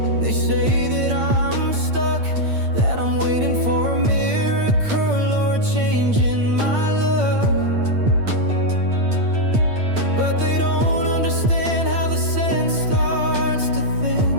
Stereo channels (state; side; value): late; left; 8.8 ms